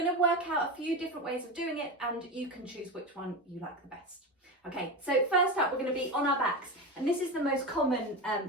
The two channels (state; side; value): normal; both; correlation 0.20